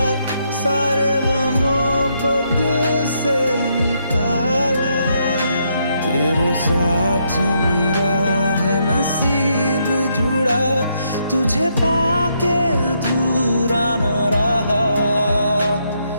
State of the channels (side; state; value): both; inverted; correlation -0.76